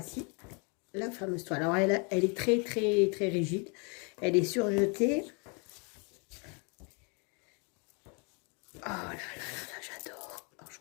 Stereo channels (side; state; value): right; quieter; 33.9 dB